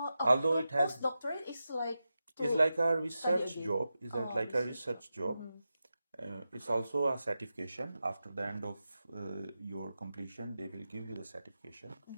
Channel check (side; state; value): both; inverted; correlation -0.91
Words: Although it has postdoctorate is like it's like a research again. job. It's like a research job. It's also a certification. After the end of your completion, they will give you the certification.